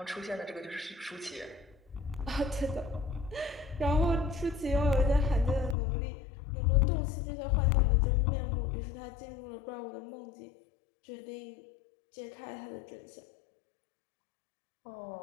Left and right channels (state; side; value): drops out; right; at 5.8 s